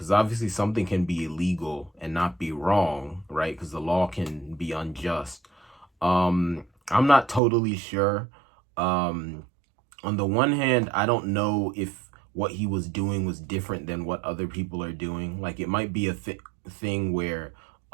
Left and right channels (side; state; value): left; drops out; at 7.4 s